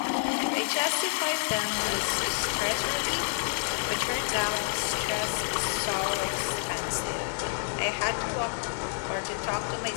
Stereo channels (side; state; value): right; silent; digital silence